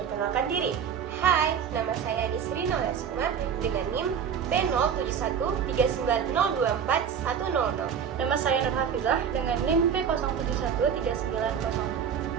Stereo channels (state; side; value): quieter; left; 7.6 dB